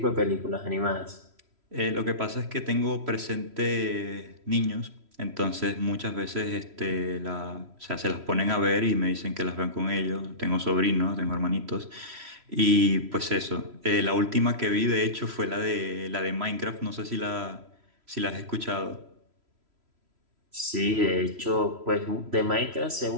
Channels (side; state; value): left; late; 3.0 ms